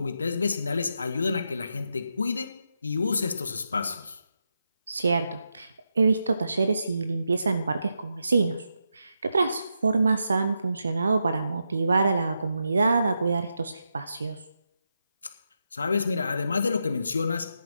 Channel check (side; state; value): both; inverted; correlation -0.85